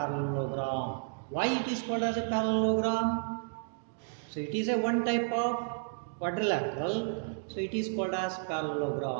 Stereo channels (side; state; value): left; silent; digital silence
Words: Why it is called as a parallelogram? So it is a one type of quadrilateral. So it is called as